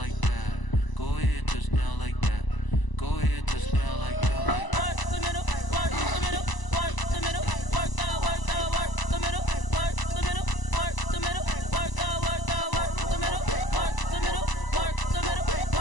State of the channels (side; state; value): right; late; 1.0 ms